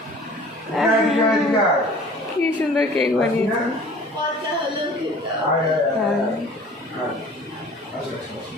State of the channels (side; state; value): both; normal; correlation 0.47